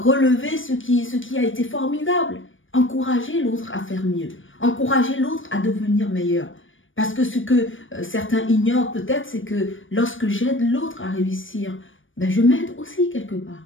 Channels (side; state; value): right; late; 0.57 ms